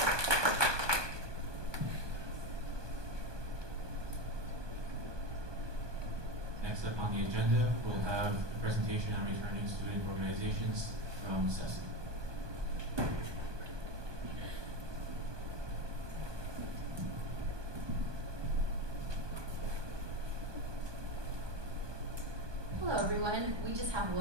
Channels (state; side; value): late; left; 1.2 ms